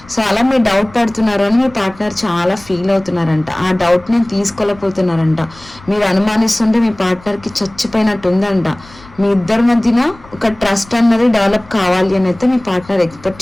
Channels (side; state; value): left; noise; rumble, 23 dB below the sound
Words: సో అలా మీరు డౌట్ పడుతున్నారు అని మీ పార్ట్నర్ చాలా ఫీల్ అవుతున్నారంట, ఆ డౌట్ నేను తీసుకోలేకపోతున్నారంట. మీరు అనుమానిస్తుంటే మీ పార్ట్నర్కి చచ్చిపోయినట్టు ఉందంట. మీ ఇద్దరి మధ్యన ఒక ట్రస్ట్ అన్నది డెవలప్ కావాలి అని అయితే మీ పార్ట్నర్ ఎక్స్పెక్ట్